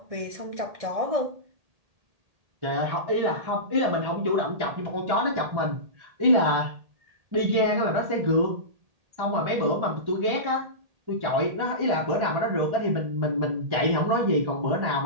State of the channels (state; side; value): late; left; 1.8 ms